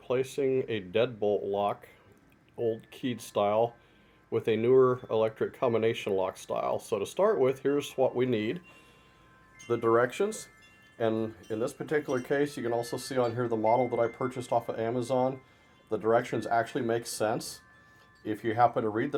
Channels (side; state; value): both; identical; correlation 1.00